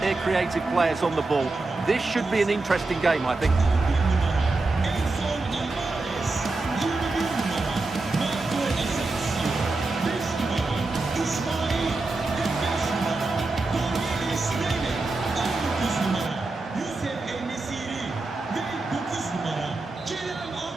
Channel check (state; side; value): quieter; left; 3.3 dB